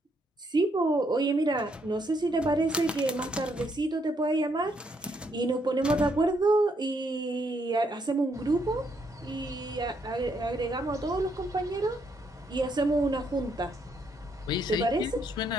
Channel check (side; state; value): both; normal; correlation 0.73